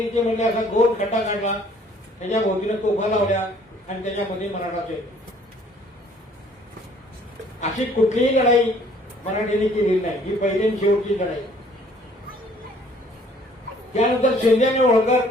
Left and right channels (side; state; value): both; normal; correlation 0.58